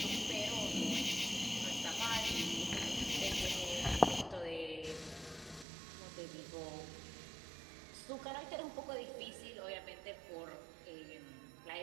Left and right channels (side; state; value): left; drops out; at 5.7 s